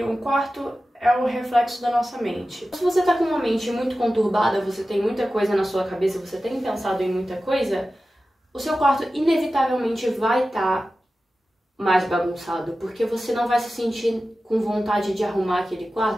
um quarto é o reflexo da nossa mente. Se você tá com uma mente muito conturbada, você tem muita coisa na sua cabeça, você tem pensado em muita coisa, o seu quarto inevitavelmente vai estar mais bagunçado, porque você não vai se sentir com vontade de arrumar aquele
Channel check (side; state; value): both; normal; correlation 0.94